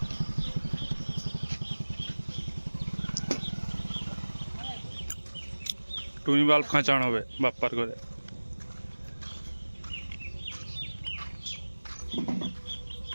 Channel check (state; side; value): inverted; both; correlation -1.00